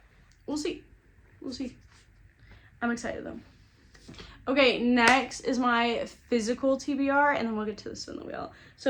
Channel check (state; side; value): identical; both; correlation 1.00